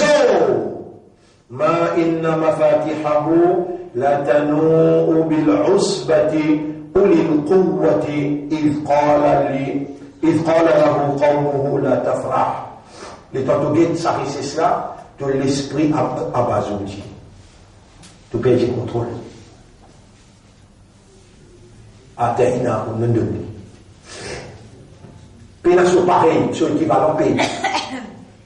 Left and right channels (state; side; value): identical; both; correlation 1.00